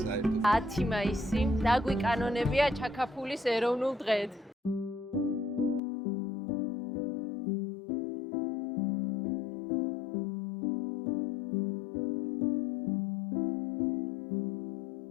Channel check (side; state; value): right; drops out; at 5.8 s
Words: საერთოდ. 10 მაისი დაგვიკანონებია ჩაკაფულის ეროვნულ დღედ.